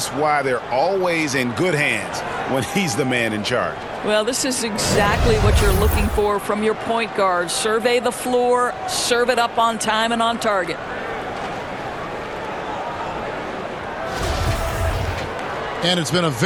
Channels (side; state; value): both; identical; correlation 1.00